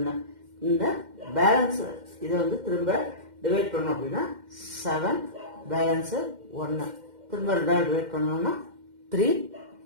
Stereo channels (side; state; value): left; late; 2.1 ms